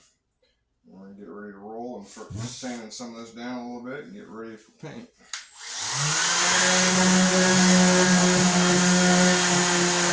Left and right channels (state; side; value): identical; both; correlation 1.00